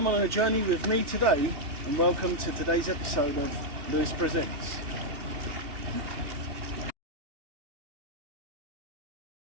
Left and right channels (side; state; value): left; late; 2.7 ms